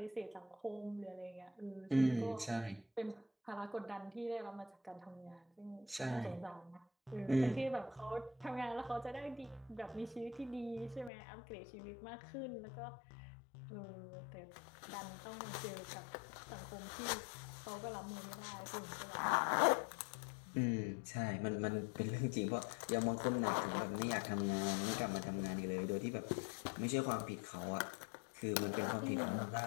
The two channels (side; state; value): right; drops out; at 11.1 s